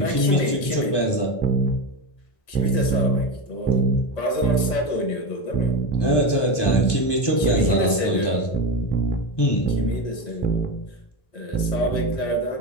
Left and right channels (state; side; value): late; right; 1.2 ms